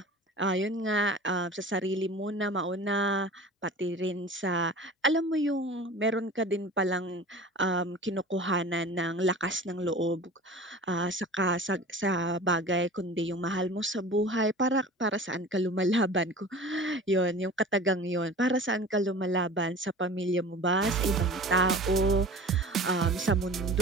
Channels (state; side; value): normal; both; correlation 0.39